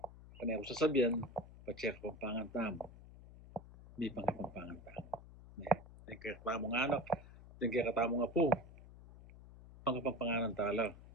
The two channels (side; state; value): left; noise; hum, 18 dB below the sound